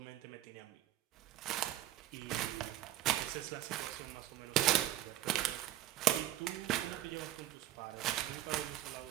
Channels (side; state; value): left; quieter; 13.8 dB